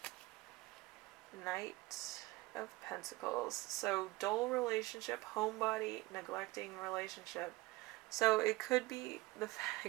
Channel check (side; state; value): left; quieter; 21.0 dB